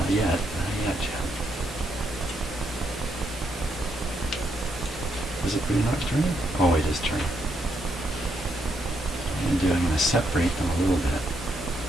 yet. Not yet, Jim. Is it really not turning? Oh, it is turning. I'm going to separate them a little bit.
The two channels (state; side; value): normal; both; correlation 0.77